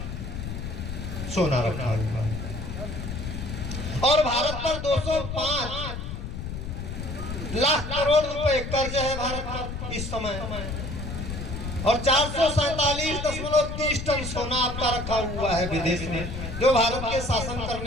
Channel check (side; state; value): left; noise; rumble, 6 dB below the sound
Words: सोना रखा हुआ है और भारत पर 205 लाख करोड़ रुपए कर्ज है भारत पर इस समय। और 447.30 टन सोना आपका रखा हुआ है विदेश में, जो भारत के शासन